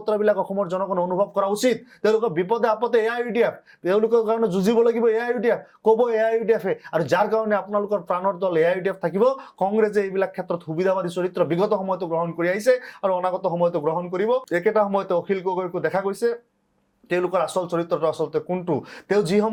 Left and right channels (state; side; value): identical; both; correlation 1.00